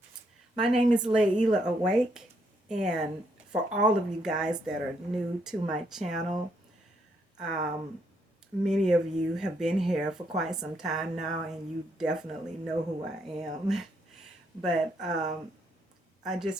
my name is Layla Awake, and for all of you guys that are new to my channel, um, many of you have been here for quite some time now, and you definitely know who I am. But I just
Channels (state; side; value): normal; both; correlation 0.75